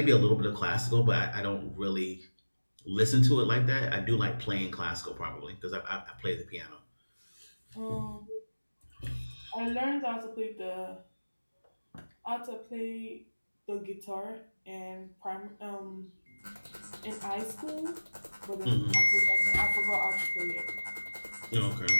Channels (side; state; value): both; inverted; correlation -1.00